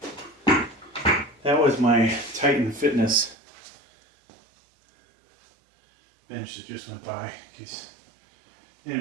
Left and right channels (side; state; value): left; drops out; at 3.4 s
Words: That was my Titan Fitness bench that just went by, in case